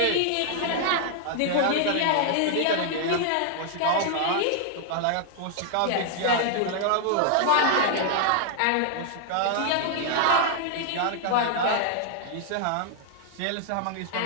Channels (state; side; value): different; both; correlation 0.00